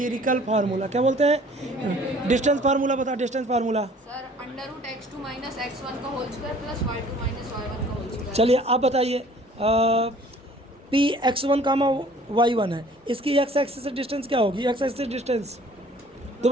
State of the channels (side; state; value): both; normal; correlation 0.53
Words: formula. क्या बोलते हैं? डिस्टेंस फार्मूला बता। Distance formula sir under root x2 minus x1 का whole square plus y2 minus y1 का होल स्क्वायर। चलिए आप बताइए पी x1 कामा y1 है इसकी x एक्सिस से डिस्टेंस क्या होगी? x axis distance